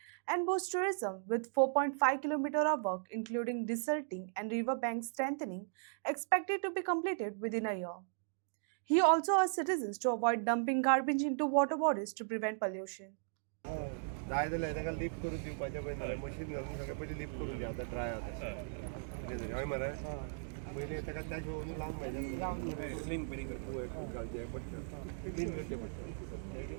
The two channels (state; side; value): silent; left; digital silence